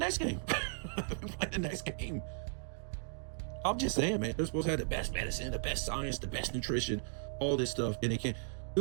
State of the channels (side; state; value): left; silent; digital silence